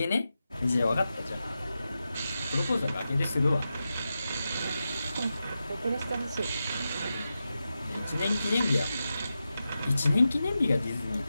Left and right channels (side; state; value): both; inverted; correlation -0.91